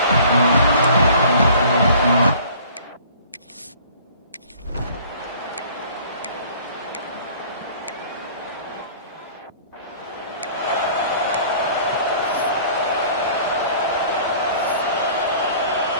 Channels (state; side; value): inverted; both; correlation -0.50